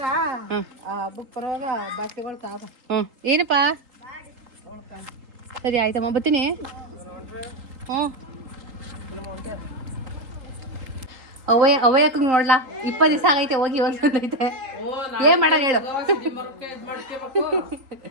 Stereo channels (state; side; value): late; left; 3.8 ms